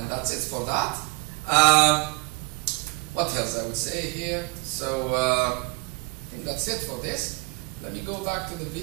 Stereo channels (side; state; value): left; quieter; 27.1 dB